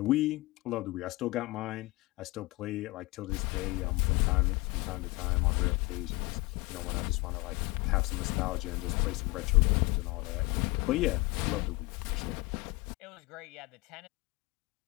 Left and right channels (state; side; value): quieter; right; 23.0 dB